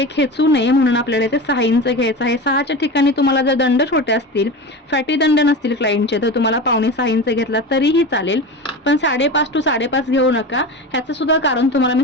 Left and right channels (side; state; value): both; normal; correlation 0.27